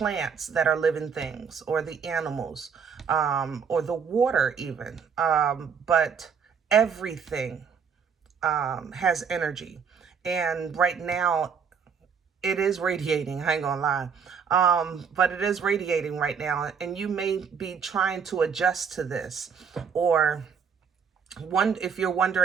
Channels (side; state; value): left; quieter; 6.6 dB